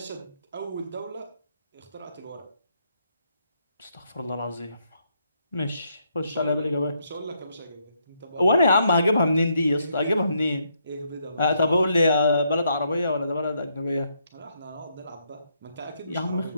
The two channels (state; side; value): inverted; both; correlation -0.75